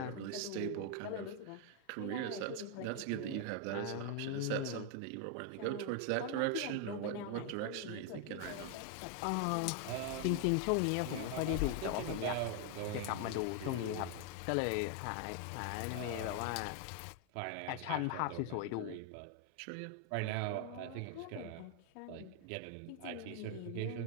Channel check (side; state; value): both; different; correlation 0.00